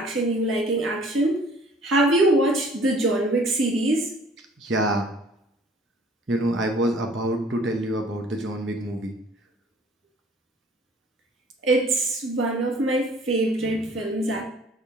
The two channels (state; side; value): normal; both; correlation 0.54